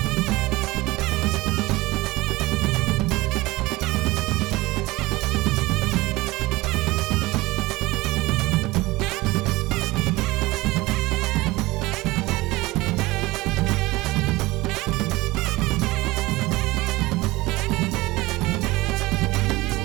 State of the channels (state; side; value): quieter; left; 20.5 dB